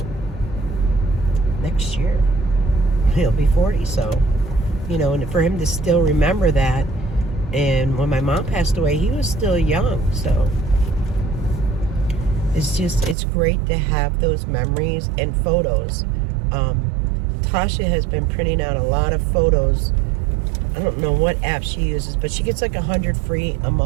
next year he'll be 40. So, you know, and for him to still remember that, and when my mom passed away, he was still young. So it's great to have those memories and photos. Tasha has been printing out a lot of photos. I don't know what app she uses, but she gets like 100 free a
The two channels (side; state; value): left; drops out; at 13.2 s